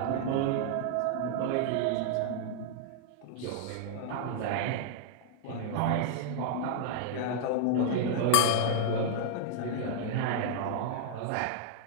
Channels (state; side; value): different; both; correlation -0.01